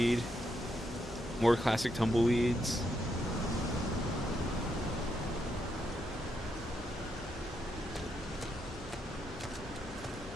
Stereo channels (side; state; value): both; normal; correlation 0.80